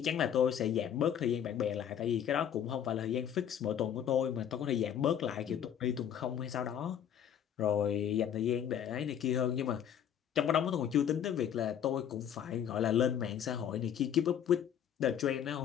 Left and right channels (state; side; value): quieter; right; 9.3 dB